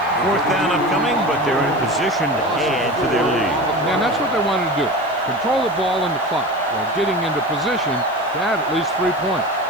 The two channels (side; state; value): left; noise; hiss, 26 dB below the sound